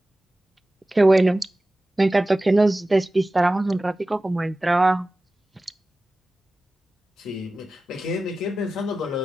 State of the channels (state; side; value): normal; both; correlation 0.96